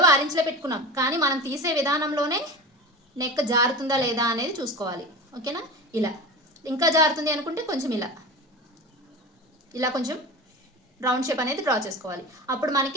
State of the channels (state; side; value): normal; both; correlation 0.30